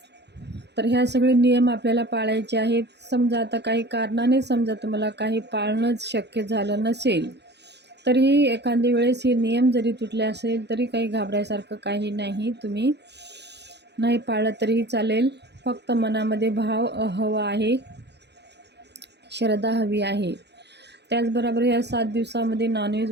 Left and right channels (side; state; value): left; late; 0.50 ms